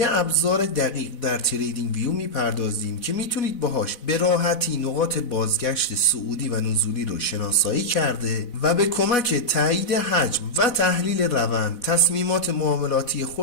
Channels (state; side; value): late; right; 4.1 ms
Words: ابزار دقیق در تریدینگ ویو میپردازیم که میتونید باهاش به راحتی نقاط بازگشت صعودی و نزولی رو شناسایی کرده و به کمک تایید حجم و تحلیل روند تصمیمات معاملاتی